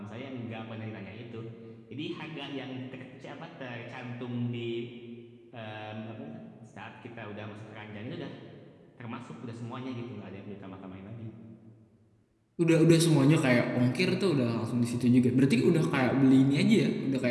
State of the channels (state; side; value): identical; both; correlation 1.00